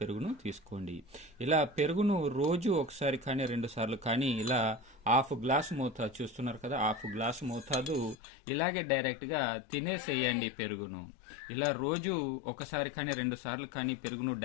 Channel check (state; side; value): drops out; right; at 8.2 s